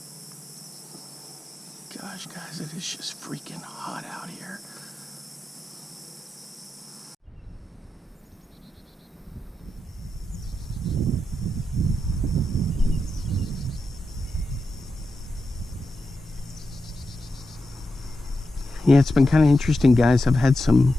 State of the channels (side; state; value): both; normal; correlation 0.88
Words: Gosh, guys, it is just freaking hot out here. Yeah, it's been kind of interesting, guys. I've had some